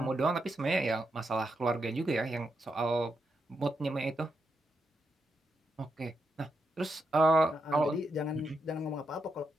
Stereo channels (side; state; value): both; normal; correlation 0.83